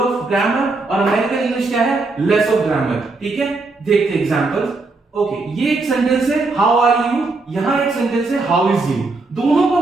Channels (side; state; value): left; quieter; 3.5 dB